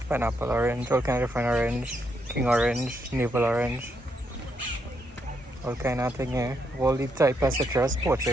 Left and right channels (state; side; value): normal; both; correlation 0.78